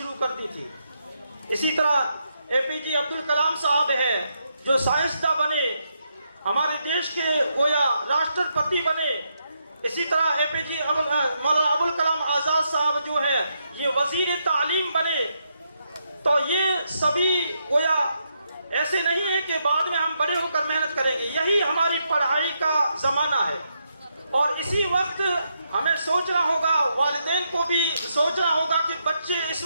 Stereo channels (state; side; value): inverted; both; correlation -0.80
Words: कर दी थी। इसी तरह एपीजे अब्दुल कलाम साहब है जो साइंसदान बने, हमारे देश के गोया राष्ट्रपति बने। इसी तरह एपीजे मौलाना अबुल कलाम आजाद साहब जो है ये वजीर तालीम बने। तो ये सभी गोया ऐसे नहीं है कि बाद में हम बड़े होकर मेहनत करेंगे, यही हमारी पढ़ाई का जमाना है। और इसी वक्त हमें सोचना होगा, वालिदैन को भी सोचना होगा कि बच्चे इस